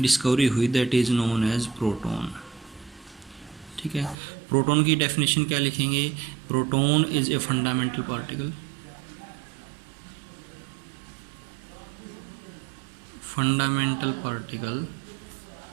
डिस्कवरी हुई that is known as proton, ठीक है। प्रोटॉन की डेफिनेशन क्या लिखेंगे, proton is a fundamental particle, fundamental particle,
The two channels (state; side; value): drops out; left; at 4.2 s